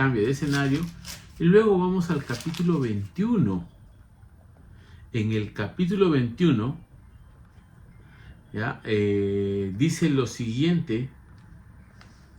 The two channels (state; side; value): identical; both; correlation 1.00